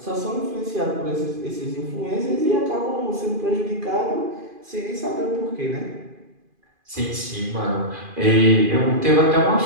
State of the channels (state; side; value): late; left; 2.4 ms